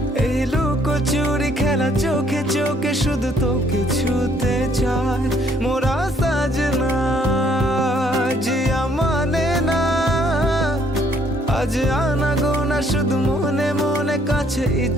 এই লুকোচুরি খেলা চোখে চোখে শুধু তোকে ছুতে চায় মোরা সাজনা জিয়া মানে না আজ আনা গোনা শুধু মনে মনে কাছে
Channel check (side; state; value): both; normal; correlation 0.66